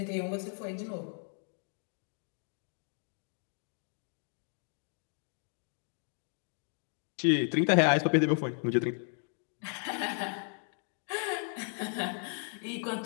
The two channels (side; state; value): right; silent; 55 dB below the other